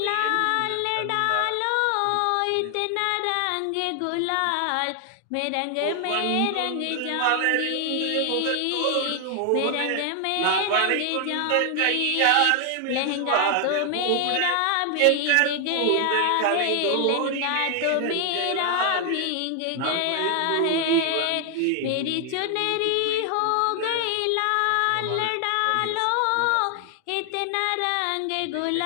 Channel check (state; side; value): different; both; correlation 0.00